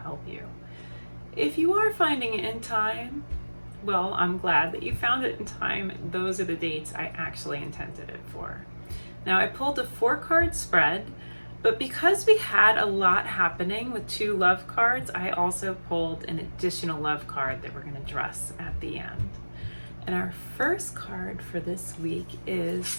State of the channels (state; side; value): inverted; both; correlation -1.00